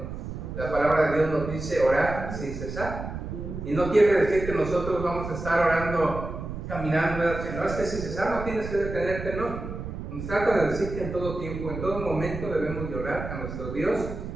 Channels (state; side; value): noise; right; rumble, 7 dB below the sound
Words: La palabra de Dios nos dice orar sin cesar. Y no quiere decir que nosotros vamos a estar orando, caminando, no es que sin cesar no tienes que detenerte, no. Nos trata de decir que en todo tiempo, en todo momento debemos de orar a nuestro Dios